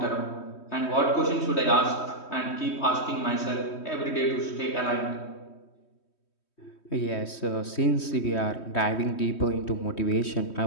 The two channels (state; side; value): late; right; 3.2 ms